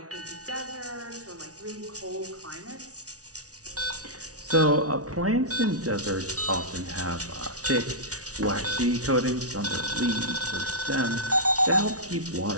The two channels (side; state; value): left; late; 0.67 ms